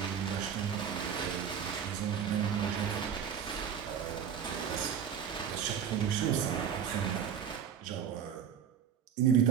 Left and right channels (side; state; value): left; quieter; 8.1 dB